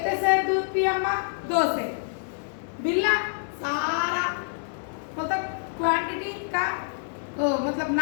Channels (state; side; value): silent; right; digital silence